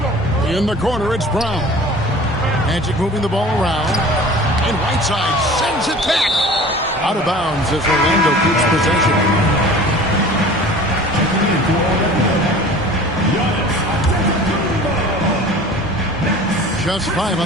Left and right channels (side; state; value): both; normal; correlation 0.43